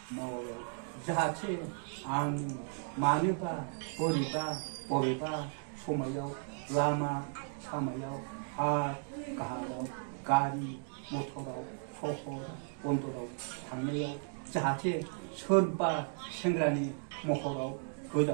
मावो जाहाथे आं मानोबा बबेबा समायाव लामा सामायाव हा गाहायाव गारि मटराव सहर बन्दराव थांनायाव जाहाथे सोरबा सेंग्रानि महराव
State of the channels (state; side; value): silent; left; 54 dB below the other